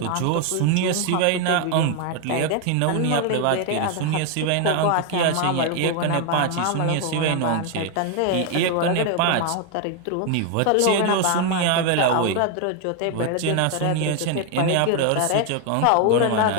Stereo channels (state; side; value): different; both; correlation 0.01